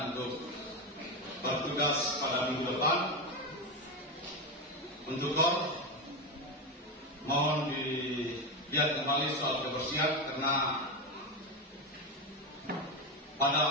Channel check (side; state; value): both; normal; correlation 0.14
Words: untuk bertugas pada minggu depan, untuk Kor mohon dilihat kembali soal kebersihan, karena